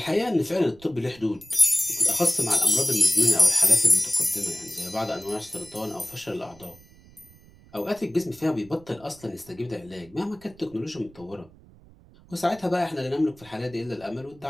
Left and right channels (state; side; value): noise; right; rumble, 24 dB below the sound